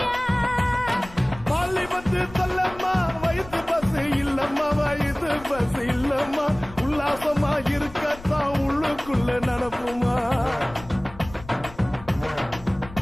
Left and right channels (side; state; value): left; noise; rumble, 17 dB below the sound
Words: பஸ் இல்லம்மா உல்லாசமா இருக்கத்தான் உள்ளுக்குள்ள நடப்புமா